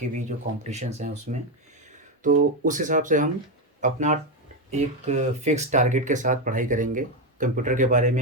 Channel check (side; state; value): both; normal; correlation 0.09